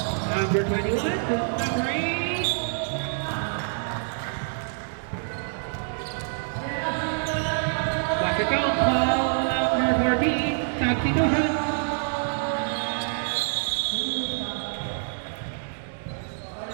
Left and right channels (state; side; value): silent; left; 61 dB below the other